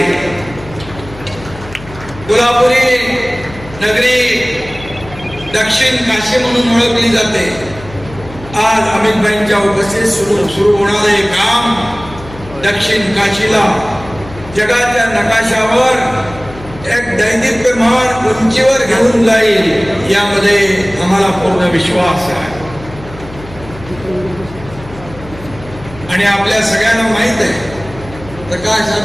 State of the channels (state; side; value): noise; left; hum, 16 dB below the sound